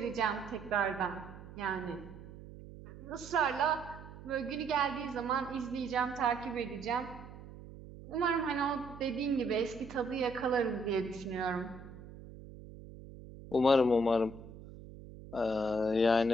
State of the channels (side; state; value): right; noise; hum, 15 dB below the sound